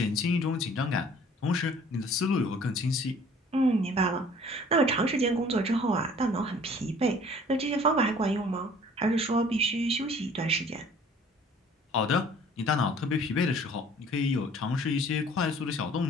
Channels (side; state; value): both; normal; correlation 0.52